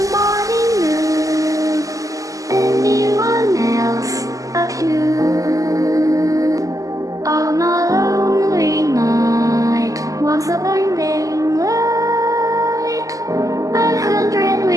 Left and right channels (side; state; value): left; late; 0.16 ms